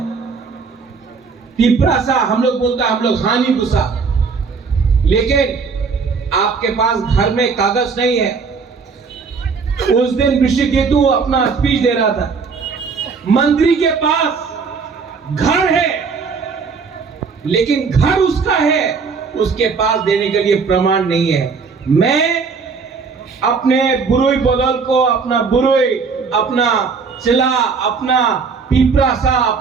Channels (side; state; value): left; quieter; 5.1 dB